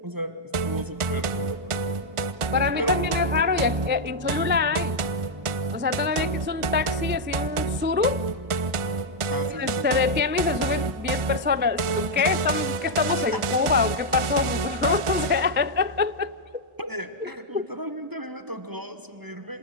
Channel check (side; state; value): left; late; 1.4 ms